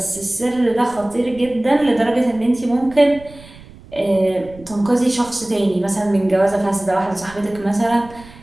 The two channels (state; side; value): noise; right; rumble, 21 dB below the sound